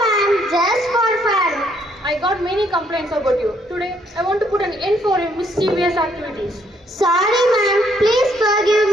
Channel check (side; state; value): both; normal; correlation 0.69